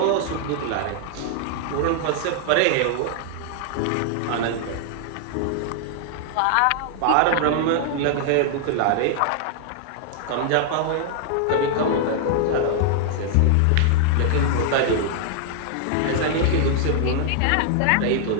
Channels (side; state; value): both; different; correlation -0.01